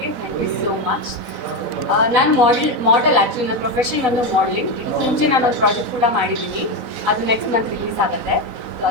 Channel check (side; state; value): right; late; 4.0 ms